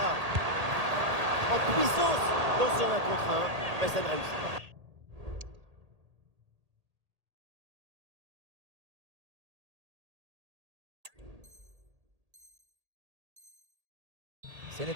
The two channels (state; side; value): late; left; 1.8 ms